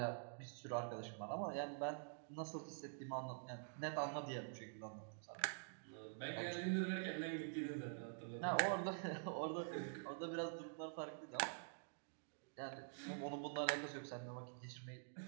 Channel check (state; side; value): silent; left; digital silence